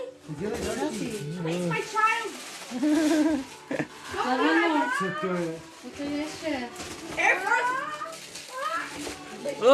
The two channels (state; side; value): identical; both; correlation 1.00